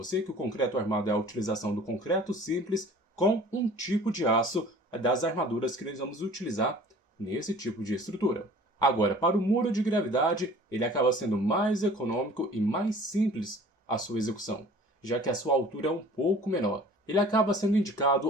que o concreto armado é a utilização do concreto simples com um tipo de aço das armaduras que nós vamos utilizar nesse tipo de estrutura. Agora, para o muro de gravidade, ele acaba sendo mais econômico e mais simples a sua execução, já que a sua altura é um pouco menor. Ele acaba sendo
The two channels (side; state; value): both; normal; correlation 0.47